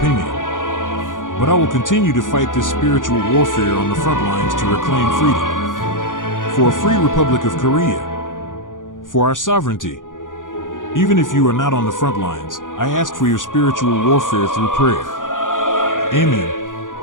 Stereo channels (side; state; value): right; late; 0.88 ms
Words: but I will continue to fight this spiritual warfare on the front lines to reclaim freedom. For a free Republic of Korea. For our sovereignty. Even if you are not on the front lines, I ask for your spiritual warfare through prayer. Amen.